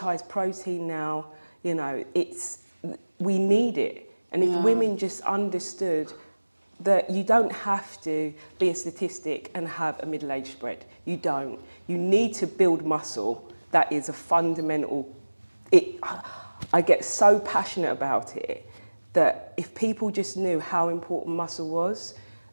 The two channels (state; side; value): inverted; both; correlation -1.00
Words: protein now, you know, we need it. And if women just understood that you don't have to be a statistic and have a middle-aged spread. You don't. You need to build muscle. That is a fundamental... I get so passionate about it that if people just knew how important muscle was,